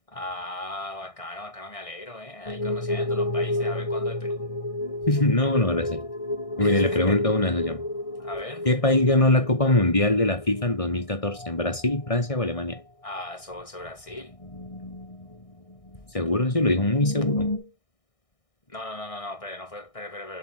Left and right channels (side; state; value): right; late; 1.6 ms